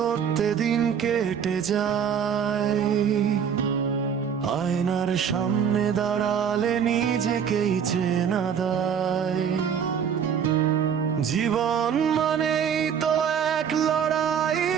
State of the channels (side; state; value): left; quieter; 7.6 dB